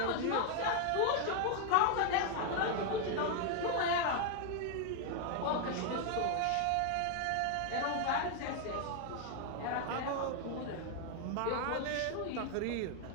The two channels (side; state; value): both; different; correlation 0.00